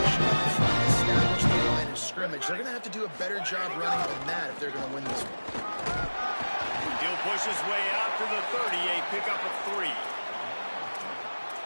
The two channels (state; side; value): inverted; both; correlation -1.00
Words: up front, establish the line of scrimmage. They're going to have to do a better job running than that if they're going to win this one. He'll push his way out to the 30, a pickup of 3.